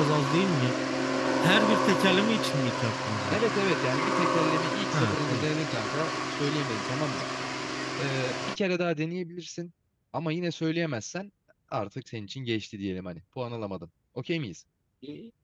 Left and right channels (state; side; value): identical; both; correlation 1.00